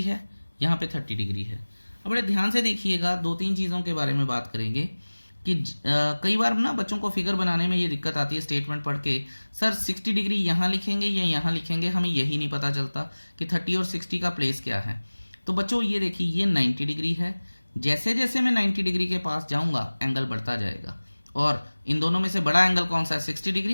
है, यहाँ पे 30 डिग्री है। अब बड़े ध्यान से देखिएगा, दो तीन चीज़ों के बारे में बात करेंगे कि कई बार ना बच्चों को फिगर बनाने में ये दिक्कत आती है स्टेटमेंट पढ़ के, सर 60 डिग्री यहाँ लिखेंगे या यहाँ लिखेंगे, हमें यही नहीं पता चलता कि 30 और 60 का प्लेस क्या है। तो बच्चों ये देखिए, ये 90 डिग्री है, जैसे जैसे मैं 90 डिग्री के पास जाऊँगा एंगल बढ़ता जाएगा, और इन दोनों में से बड़ा एंगल कौन सा है, 60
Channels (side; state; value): both; inverted; correlation -1.00